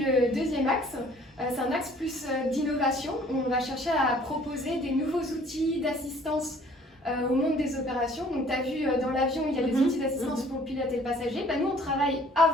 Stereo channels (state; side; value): normal; both; correlation 0.55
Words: deuxième axe, c'est un axe plus d'innovation. On va chercher à proposer des nouveaux outils d'assistance au monde des opérations. Donc tu as vu dans l'avion, il y a des outils d'assistance pour le pilote et le passager. Nous, on travaille